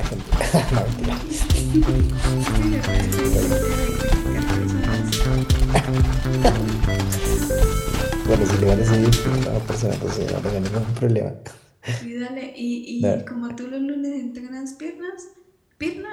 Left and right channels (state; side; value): identical; both; correlation 1.00